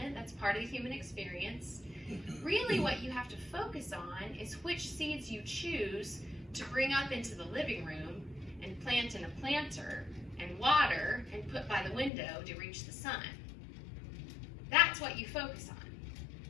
That's part of the human experience. Really, what you have to focus on is which seeds you choose to bring up into the living room and plant in a planter and water and put by the window to reach the sun. That's what you focus on.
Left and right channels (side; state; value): right; drops out; at 12.1 s